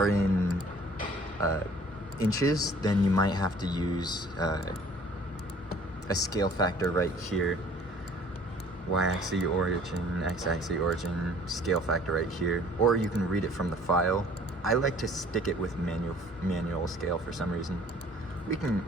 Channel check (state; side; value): normal; both; correlation 0.53